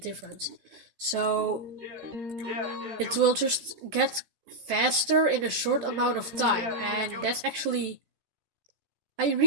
So it will just get faster in a short amount of time, and that's actually, I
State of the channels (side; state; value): left; late; 14 ms